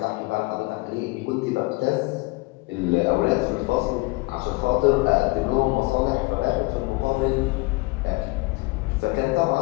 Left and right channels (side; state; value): right; quieter; 24.3 dB